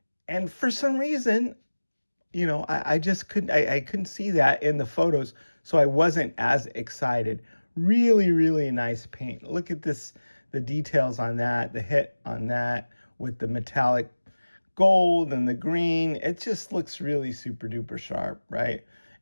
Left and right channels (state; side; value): inverted; both; correlation -1.00